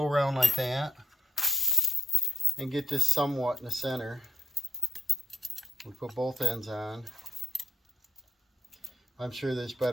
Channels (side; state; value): both; normal; correlation 0.76